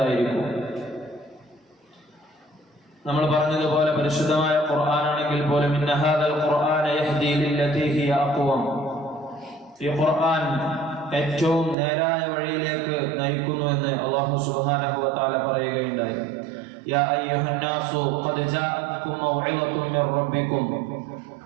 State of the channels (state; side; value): drops out; left; at 11.8 s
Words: നമ്മൾ പറഞ്ഞതുപോലെ പരിശുദ്ധമായ ഖുർആനാണെങ്കിൽ പോലും ഇന്ന ഹാദൽ ഖുർആന യഹ്ദി ലില്ലതി ഹിയ അഖ്വം, ഈ ഖുർആൻ ഏറ്റവും നേരായ വഴിയിലേക്ക് നയിക്കുന്നു എന്ന് അല്ലാഹു സുബ്ഹാനഹു വ തആല പറയുകയുണ്ടായി. യാ അയ്യുഹന്നാസു ഖദ് ജാഅത്കും മൗഇളതും മിർ റബ്ബിക്കും,